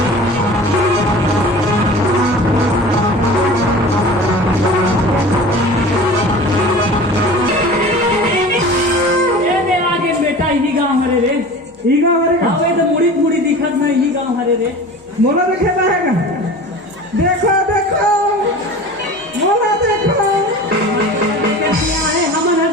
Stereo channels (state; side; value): normal; both; correlation 0.38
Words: ईगा हरे हाँ वे तो मुड़ी मुड़ी दिखत ना यही गाँव हरे रे मोला देखे रहेगा देखो देखो मोला देखो क्या है हमन हर